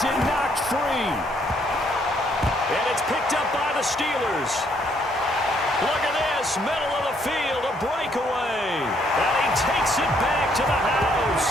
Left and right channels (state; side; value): normal; both; correlation 0.69